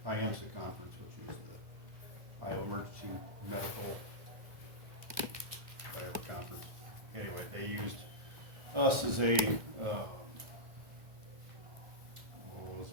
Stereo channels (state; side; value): late; left; 2.1 ms